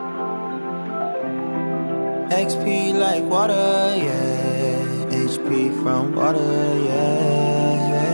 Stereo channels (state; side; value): inverted; both; correlation -1.00